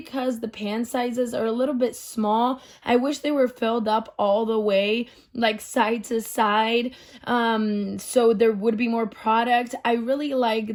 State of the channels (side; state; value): both; identical; correlation 1.00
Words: the pan sizes are a little bit small. I wish they were filled up all the way, like side to side, so there would be more product. I really